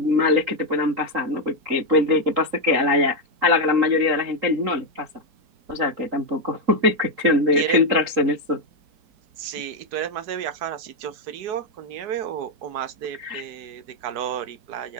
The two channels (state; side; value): late; left; 3.8 ms